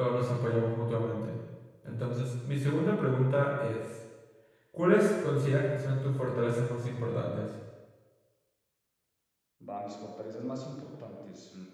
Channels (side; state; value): both; identical; correlation 1.00